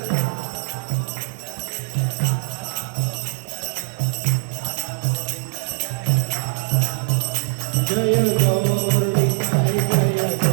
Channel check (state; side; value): silent; left; 64 dB below the other